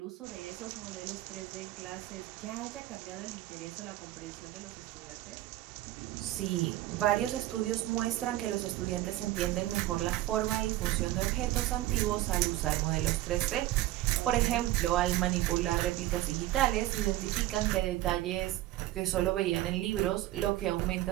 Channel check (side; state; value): left; quieter; 15.6 dB